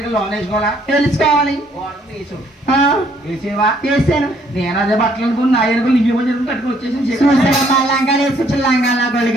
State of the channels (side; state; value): both; normal; correlation 0.66